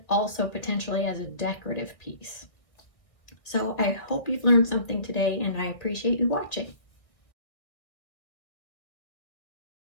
also potentially as a decorative piece. So I hope you've learned something today, and I appreciate you watching.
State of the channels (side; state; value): right; late; 1.9 ms